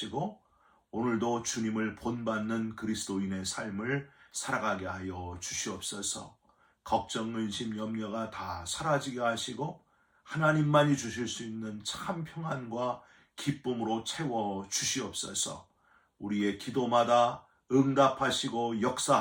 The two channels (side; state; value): both; identical; correlation 1.00